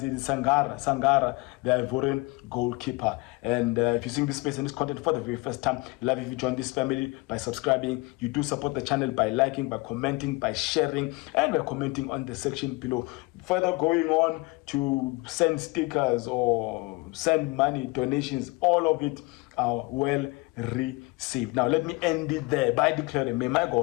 Sangara, the Ivorian goalkeeper. And if you're seeing this space and this content for the very first time, love if you join this family by subscribing. You do support the channel by liking, by commenting, by sharing, and by commenting on the section below. Further going on to send stickers or send money, donations, all of it are well received. Now let me end it there by declaring, may my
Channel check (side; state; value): right; quieter; 25.4 dB